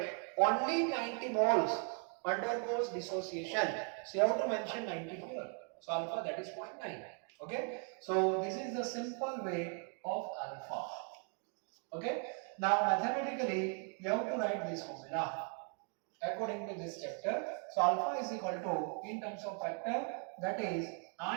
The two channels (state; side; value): quieter; left; 39.2 dB